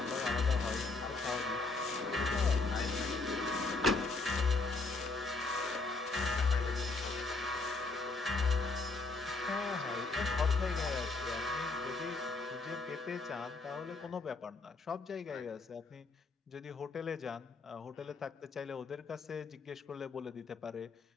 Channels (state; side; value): quieter; right; 3.7 dB